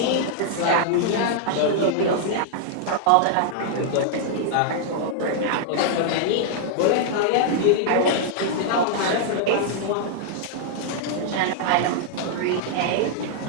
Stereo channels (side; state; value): both; different; correlation -0.01